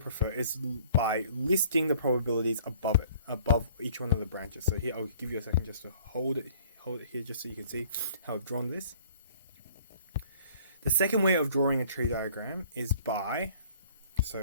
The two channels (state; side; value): inverted; both; correlation -0.54